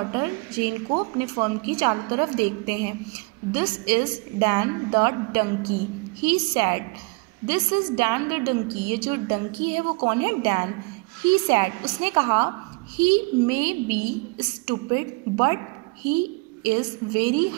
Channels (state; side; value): quieter; left; 29.2 dB